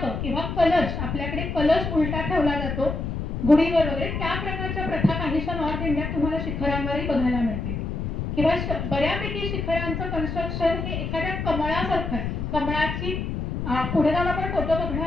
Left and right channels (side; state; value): left; noise; rumble, 3 dB below the sound